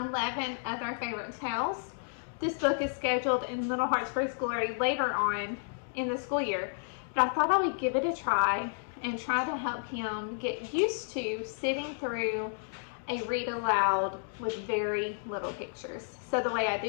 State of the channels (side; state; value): right; silent; digital silence